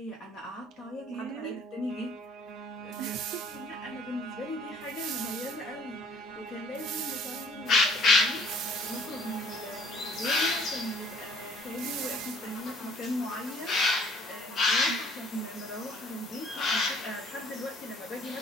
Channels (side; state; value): both; normal; correlation 0.56